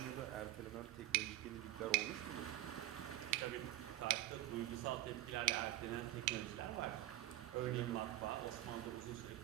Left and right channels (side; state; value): left; quieter; 15.2 dB